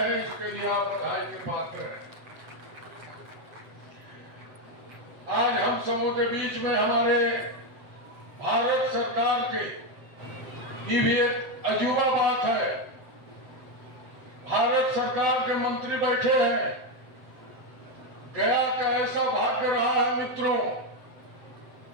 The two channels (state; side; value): late; left; 7.9 ms